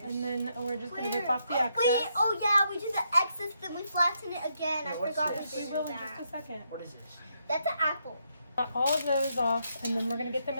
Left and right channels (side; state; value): both; inverted; correlation -0.78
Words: And then we're just gonna Where? rip off the excess. Wait, oh yeah, we did the excess, then we flatten it again. Yeah, I what's forgot we this? We did will in just a that. second. What is this? That's an apple. Cut all of those off, and then we're gonna get them